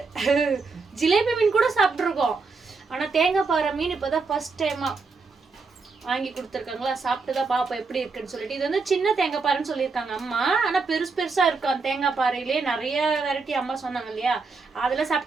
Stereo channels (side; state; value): left; quieter; 4.4 dB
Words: ஜிலேபி மீன் கூட சாப்பிட்ருக்கோம். ஆனால் தேங்காய் பாறை மீன் இப்போ தான் ஃபர்ஸ்ட் டைமாக வாங்கி கொடுத்துருக்காங்களா. சாப்பிட்டு தான் பார்ப்போம் எப்படி இருக்குன்னு சொல்லிட்டு. இது வந்து சின்ன தேங்காய் பாறைன்னு சொல்லியிருக்காங்க அம்மா. ஆனால் பெருசாக இருக்கும் தேங்காய் பாறையிலே. நிறைய வெரைட்டி அம்மா சொன்னாங்க இல்லையா, அதெல்லாம்